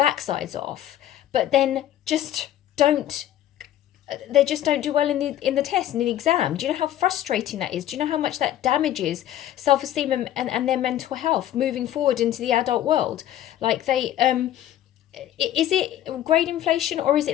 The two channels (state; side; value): quieter; right; 12.2 dB